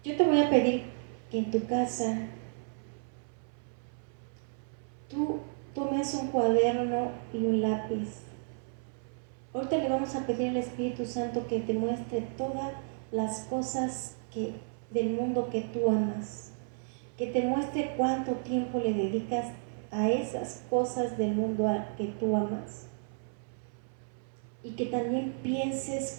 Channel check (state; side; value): silent; left; 56 dB below the other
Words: Yo te voy a pedir que en tu casa tú tomes un cuaderno y un lápiz. Ahorita le vamos a pedir al Espíritu Santo que te muestre todas las cosas del mundo que tú amas, que te muestre cuánto tiempo le dedicas a esas cosas del mundo que tú amas, y que también